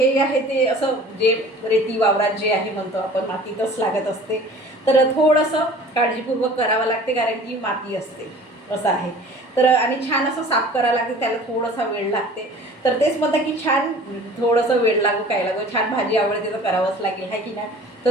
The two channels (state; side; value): normal; both; correlation 0.46